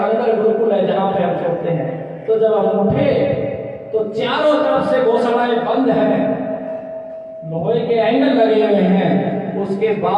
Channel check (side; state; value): both; identical; correlation 1.00